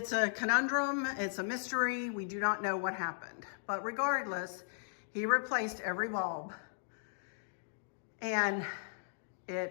a conundrum, it's a mystery. We do not know what happened. But regardless, he replaced every bulb. And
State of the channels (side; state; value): right; silent; digital silence